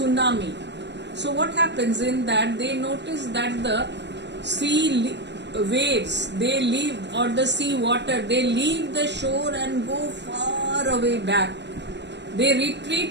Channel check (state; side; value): late; left; 0.51 ms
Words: So what happens in that, they notice that the sea waves, they leave, or the sea water, they leave the shore and go far away back. They